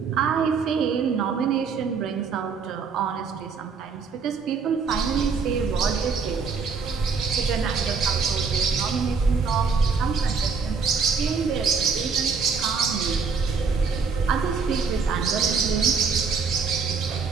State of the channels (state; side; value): quieter; left; 5.3 dB